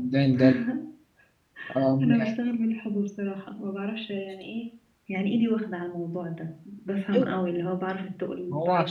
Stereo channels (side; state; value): both; identical; correlation 1.00